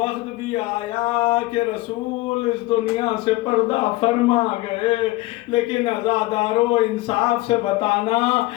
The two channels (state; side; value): quieter; right; 19.1 dB